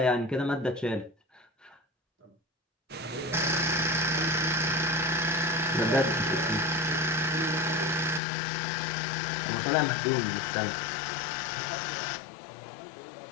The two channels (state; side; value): drops out; right; at 8.2 s